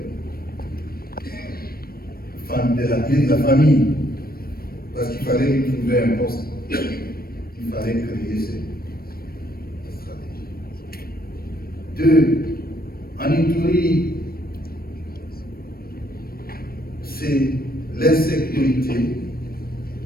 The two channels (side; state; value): right; late; 0.44 ms